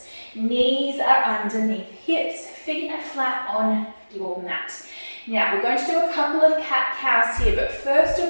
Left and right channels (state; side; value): inverted; both; correlation -1.00